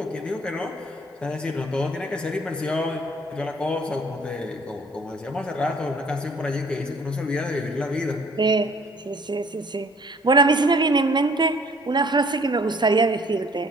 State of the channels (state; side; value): normal; both; correlation 0.56